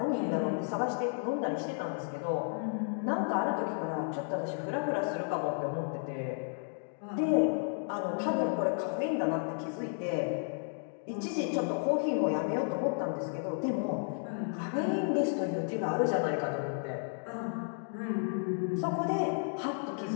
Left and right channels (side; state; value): right; silent; 56 dB below the other